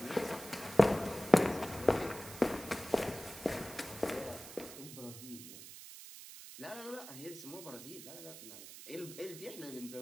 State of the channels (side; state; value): right; noise; hiss, 13 dB below the sound